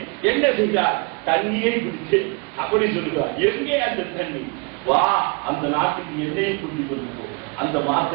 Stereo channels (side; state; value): left; quieter; 31.4 dB